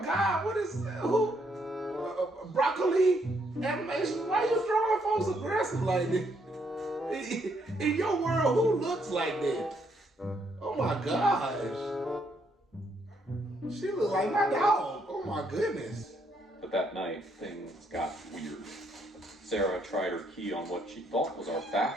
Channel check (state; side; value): normal; both; correlation 0.73